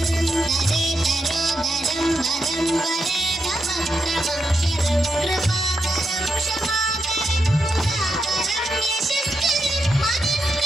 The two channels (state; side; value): normal; both; correlation 0.84